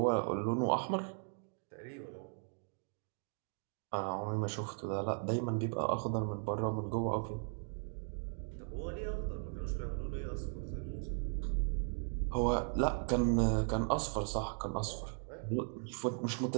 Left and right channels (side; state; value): left; silent; 53 dB below the other